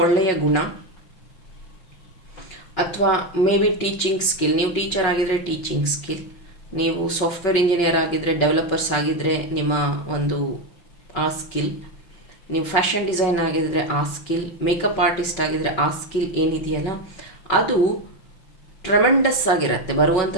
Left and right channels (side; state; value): right; late; 5.4 ms